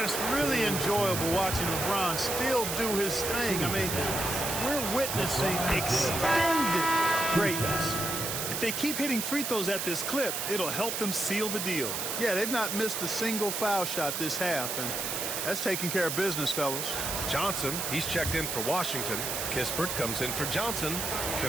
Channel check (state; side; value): noise; right; hiss, 2 dB below the sound